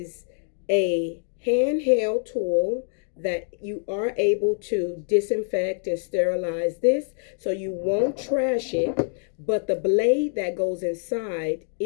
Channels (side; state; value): right; silent; digital silence